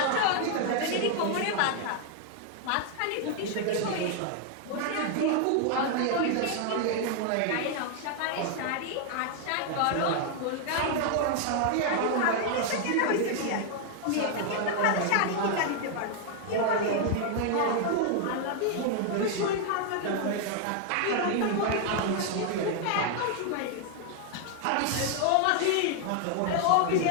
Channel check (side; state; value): both; different; correlation 0.00